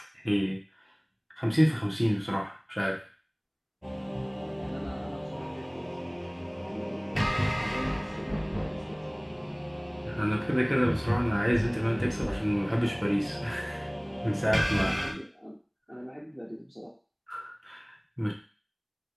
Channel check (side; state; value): both; identical; correlation 1.00